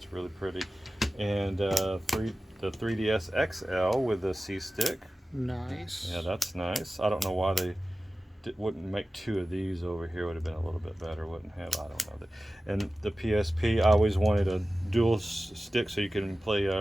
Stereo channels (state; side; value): normal; both; correlation 0.95